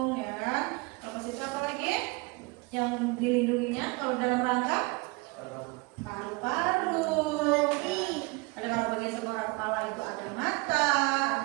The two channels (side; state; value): left; quieter; 25.8 dB